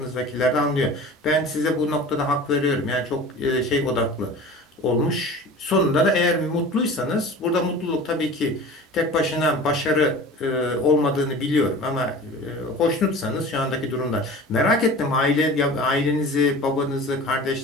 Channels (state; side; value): normal; both; correlation 0.38